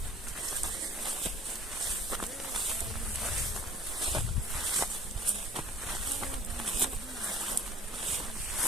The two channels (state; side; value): normal; both; correlation 0.49